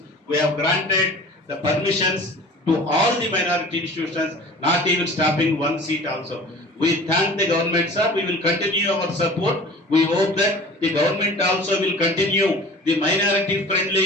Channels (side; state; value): both; normal; correlation 0.42